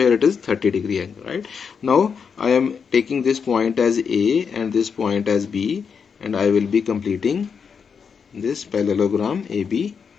it is 30-degree angle, right? Now I am taking this point as A and this point as B, and I will be completing this parallelogram AB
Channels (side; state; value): right; quieter; 6.3 dB